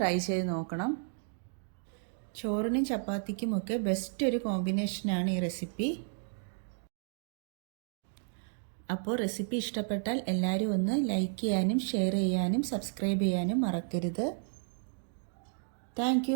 ട്രൈ ചെയ്ത് നോക്കണം. ചോറിനും ചപ്പാത്തിക്കുമൊക്കെ ബെസ്റ്റ് ഒരു കോമ്പിനേഷനാണ് ഈ റെസിപ്പി. അപ്പോൾ റെസിപ്പി ഇഷ്ടപ്പെട്ടാൽ എല്ലാവരും ഒന്ന് ലൈക്ക് ചെയ്യാനും ഷെയർ ചെയ്യാനും സബ്സ്ക്രൈബ് ചെയ്യാനും മറക്കരുത്. Thank you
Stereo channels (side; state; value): left; silent; digital silence